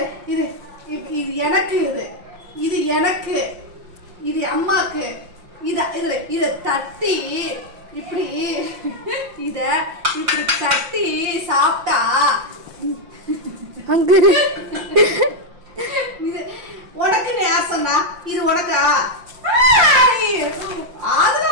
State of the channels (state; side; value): late; left; 5.7 ms